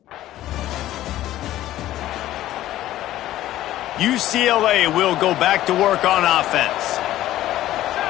UCLA will go back to work on offense.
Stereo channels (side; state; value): right; quieter; 14.1 dB